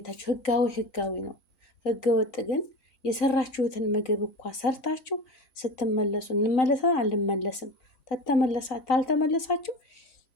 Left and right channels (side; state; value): right; late; 3.9 ms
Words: ህጋዊ ነው። ህገ ወጥ ግን የሰራችሁትን ምግብ እኳ ሰርታችሁ ስትመለሱ እንመለሰን አልመለስም ታልተመለሳችሁ